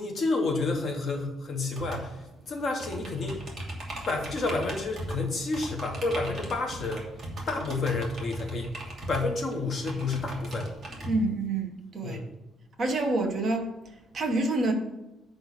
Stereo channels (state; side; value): normal; both; correlation 0.69